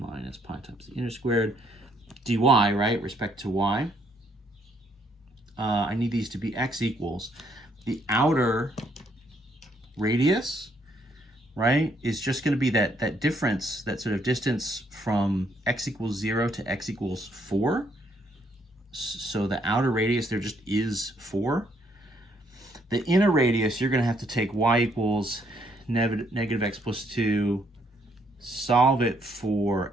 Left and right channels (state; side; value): normal; both; correlation 0.70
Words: pi times the inner squared, dy, right, respect to y. I need these to be x equals. The outer radius, right, is just going to be that difference, that sort of distance from x equals 0 to x equals 4. So the outer radius there just is 4. The inner radius, you're going to have to take y equals negative x plus 2, solve it for